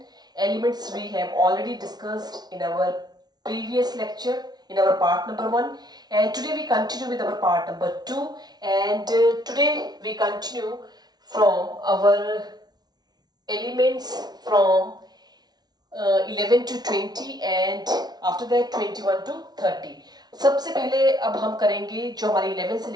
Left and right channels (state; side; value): late; left; 0.19 ms